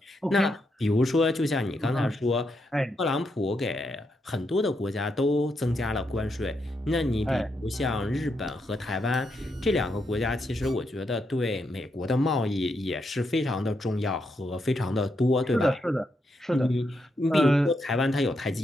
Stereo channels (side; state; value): both; normal; correlation 0.81